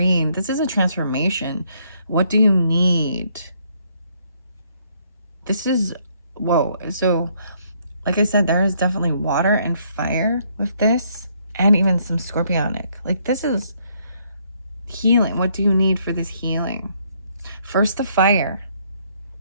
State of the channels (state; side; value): inverted; both; correlation -0.69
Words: This is a transformation. What do you need? This is, whoa. So, like I said, there is definitely water and fire with this, and even some scorpionic. Like, this is healing. What do you need for this healing? First, the fire